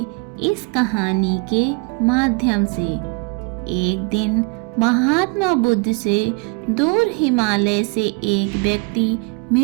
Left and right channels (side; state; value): left; quieter; 31.5 dB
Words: इस कहानी के माध्यम से। एक दिन महात्मा बुद्ध से दूर हिमालय से एक व्यक्ति